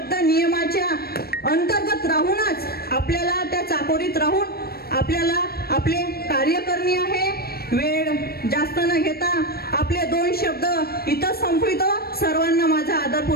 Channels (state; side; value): late; right; 0.45 ms